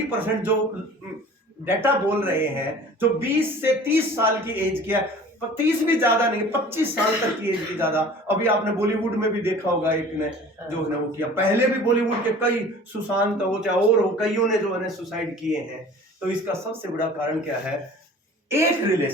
जो डाटा बोल रहे हैं, जो 20 से 30 साल की एज की है, 30 भी ज्यादा नहीं, 25 साल तक की एज की ज्यादा। अभी आपने बॉलीवुड में भी देखा होगा, एक ने जो है वो किया, पहले भी बॉलीवुड के कई सुशांत हो चाहे और हो, कईयों ने जो है सुसाइड किए हैं। तो इसका सबसे बड़ा कारण क्या है? एक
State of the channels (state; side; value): normal; both; correlation 0.45